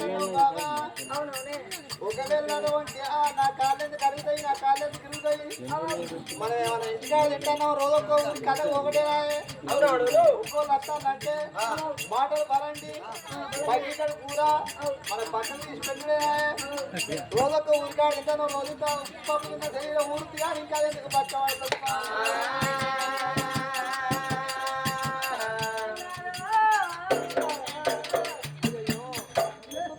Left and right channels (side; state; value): both; identical; correlation 1.00